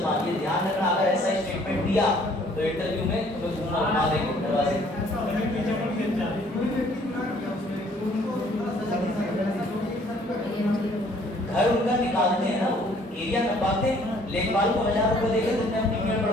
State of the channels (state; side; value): normal; both; correlation 0.59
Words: ये ध्यान रखना। अगर ऐसा स्टेटमेंट दिया तो इंटरव्यू में तुम्हें घुमा देंगे दरवाजे। घर उनका निकालते हैं ना, वो एरिया नपाते हैं, लेखपाल को 1000 रुपए देकर तुमने अपनी मेड़